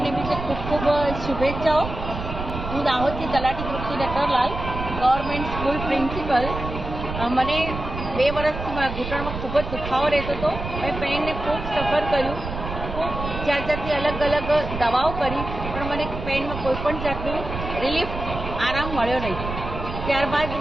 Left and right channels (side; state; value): right; noise; rumble, 7 dB below the sound